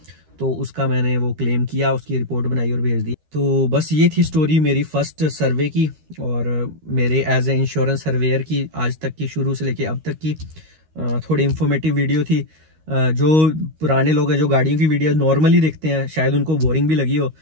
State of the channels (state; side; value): late; left; 13 ms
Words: तो उसका मैंने वो क्लेम किया, उसकी रिपोर्ट बनाई और भेज दी। तो बस ये थी स्टोरी मेरी फर्स्ट सर्वे की और मेरे एज ए इंश्योरेंस सर्वेयर की आज तक की, शुरू से लेके अब तक की। थोड़ी इंफॉर्मेटिव वीडियो थी। जो पुराने लोग हैं जो गाड़ियों की वीडियो नॉर्मली देखते हैं शायद उनको बोरिंग भी लगी हो।